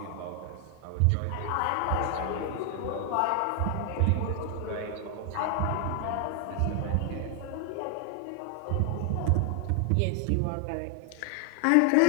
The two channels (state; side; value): different; both; correlation 0.00